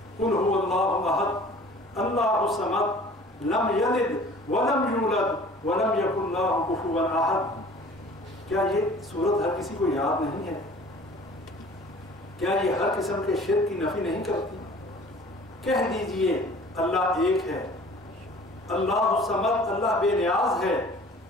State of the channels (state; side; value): normal; both; correlation 0.48